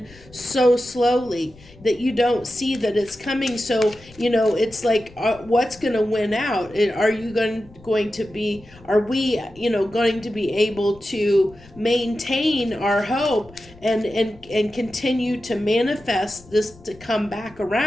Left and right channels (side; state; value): left; noise; rumble, 23 dB below the sound